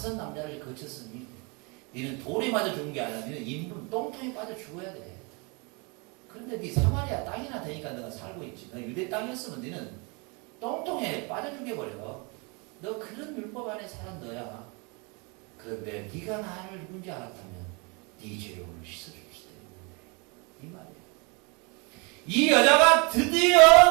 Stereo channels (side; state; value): left; quieter; 30.8 dB